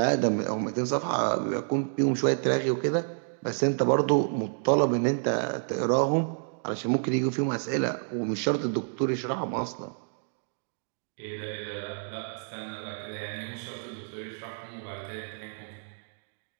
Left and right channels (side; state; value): left; silent; digital silence